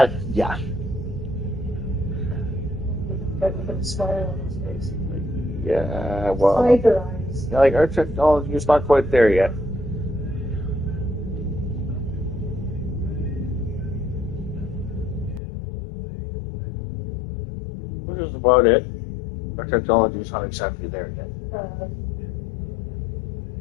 yeah. Got to put a smile on his face. Yeah, well. Tiger eyes. Yeah, like our technology is not quite there yet. Which is about it. Our technology is not exactly there yet.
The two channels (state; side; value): drops out; right; at 15.4 s